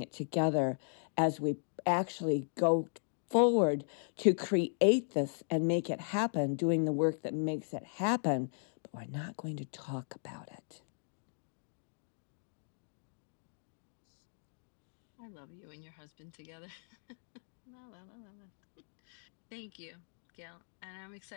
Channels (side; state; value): right; silent; digital silence